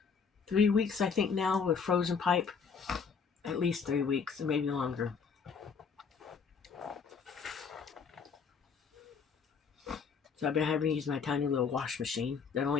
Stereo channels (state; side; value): quieter; right; 5.8 dB